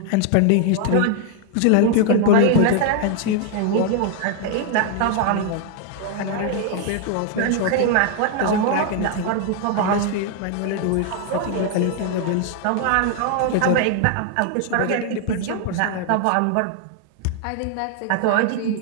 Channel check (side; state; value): both; different; correlation 0.00